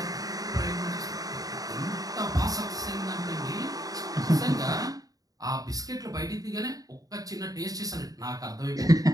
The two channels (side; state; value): left; late; 0.18 ms